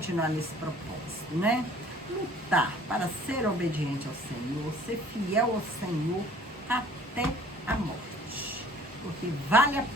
nesse propósito, né? Lutar para ser obediente ao Senhor, ser fiel ao Senhor até a morte. Porque vale a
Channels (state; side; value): normal; both; correlation 0.52